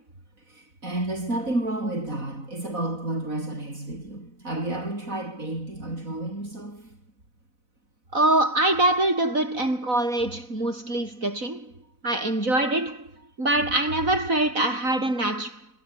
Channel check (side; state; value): left; late; 4.0 ms